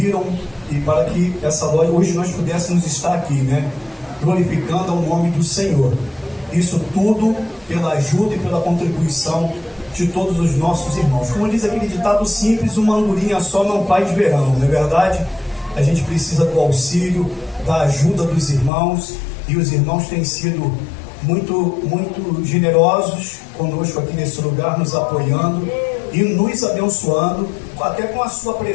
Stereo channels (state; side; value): drops out; right; at 18.7 s